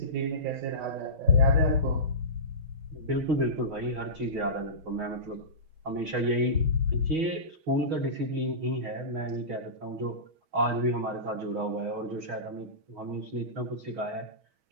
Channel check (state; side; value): late; left; 6.3 ms